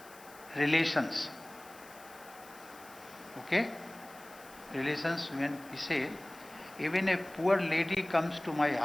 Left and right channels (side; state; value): left; noise; hiss, 21 dB below the sound